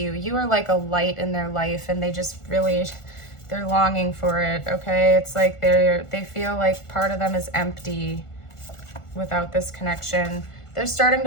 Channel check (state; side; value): late; right; 1.4 ms